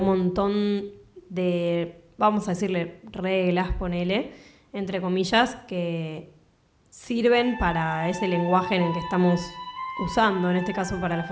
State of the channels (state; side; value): identical; both; correlation 1.00